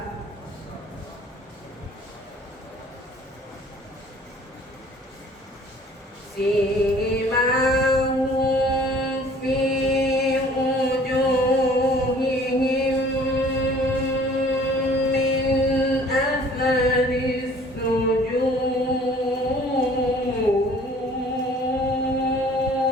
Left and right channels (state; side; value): normal; both; correlation 0.53